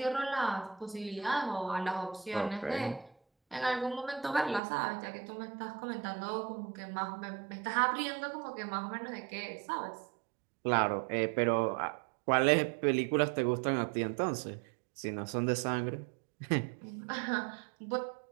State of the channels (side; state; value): left; drops out; at 4.6 s